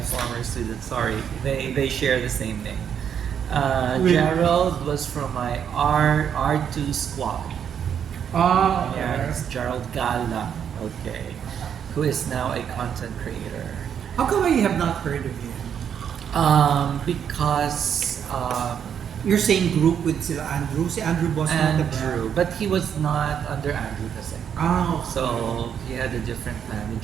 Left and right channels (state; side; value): quieter; left; 8.3 dB